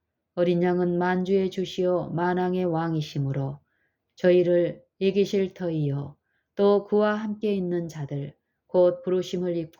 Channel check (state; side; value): identical; both; correlation 1.00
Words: 어린 양은 만주의 주시오 만왕의 왕이시므로 저희를 이기실 터이요 또 그와 함께 있는 자들 곧 부르심을